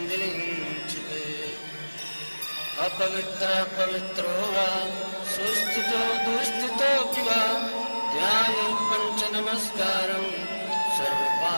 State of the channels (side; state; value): both; inverted; correlation -1.00